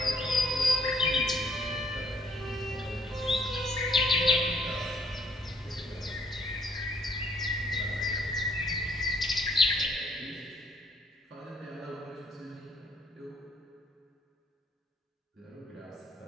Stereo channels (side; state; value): both; normal; correlation 0.66